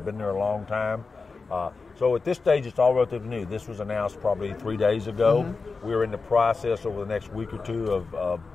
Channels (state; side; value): quieter; right; 4.3 dB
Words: been there a long time. So at this stage, it's all relatively new. This was announced probably 3 days ago. We're in the process over the next week or two of